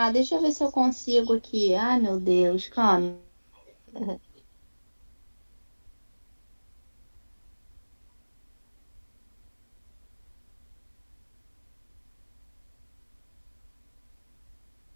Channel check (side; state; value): both; inverted; correlation -1.00